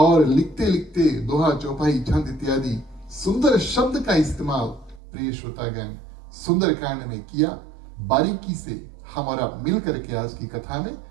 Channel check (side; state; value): left; drops out; at 5.0 s